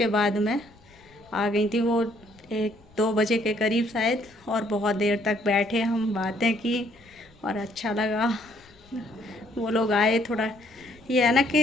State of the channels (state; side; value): noise; left; rumble, 29 dB below the sound